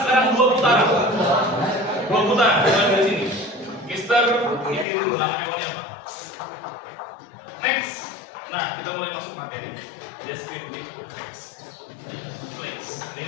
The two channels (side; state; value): right; drops out; at 4.9 s